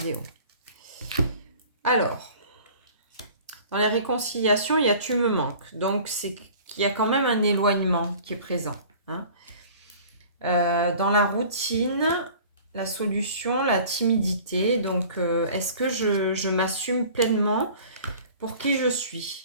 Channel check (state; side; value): inverted; both; correlation -0.46